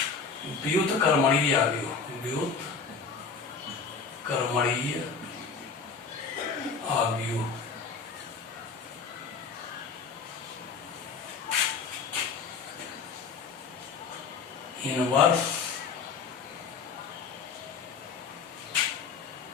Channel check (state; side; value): quieter; right; 5.2 dB